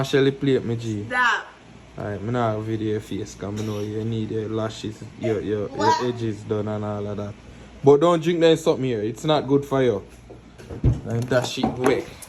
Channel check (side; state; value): both; identical; correlation 1.00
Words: Shelly plate me G. Stop. Alright, I'm not video your face because I know you need your lashes, your edges done and all of that. But don't drink that something here. It's not good for you. And that shit wet.